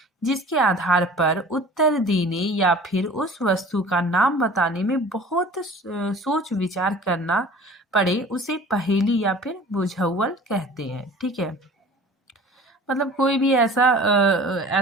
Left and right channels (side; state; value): both; normal; correlation 0.44